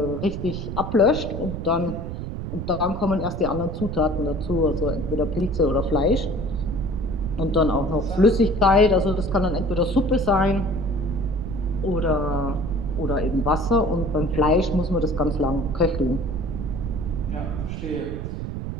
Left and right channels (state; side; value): noise; right; rumble, 6 dB below the sound